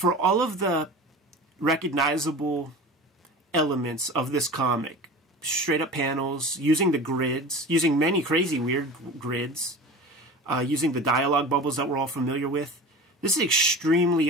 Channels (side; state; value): both; normal; correlation 0.34